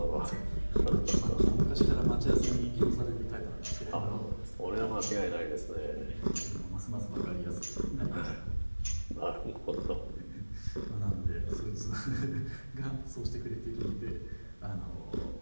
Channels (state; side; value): inverted; both; correlation -1.00